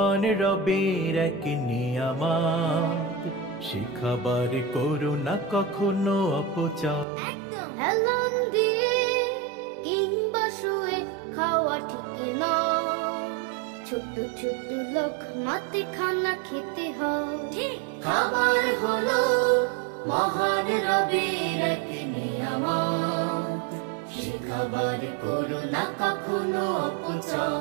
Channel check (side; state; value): left; drops out; at 7.1 s